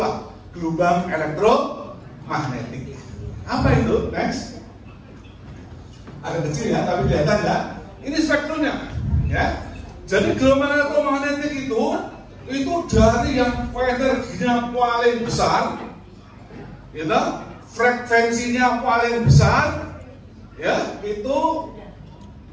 gelombang elektromagnetik. Apa itu? Next. Ada kecil ya, tapi kelihatan ya. Ini spektrumnya. Ya. Jadi gelombang elektromagnetik itu dari yang energinya paling besar, gitu, frekuensinya paling besar, ya, itu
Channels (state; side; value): identical; both; correlation 1.00